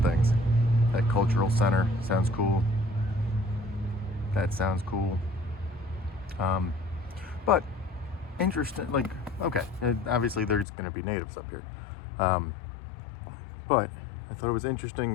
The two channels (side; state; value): right; drops out; at 10.7 s